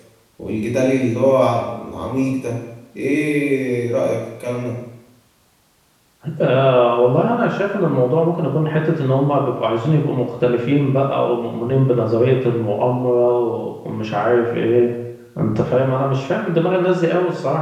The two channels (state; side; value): identical; both; correlation 1.00